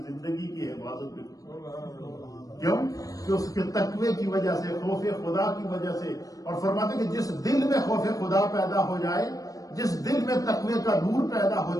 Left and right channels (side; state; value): right; late; 0.17 ms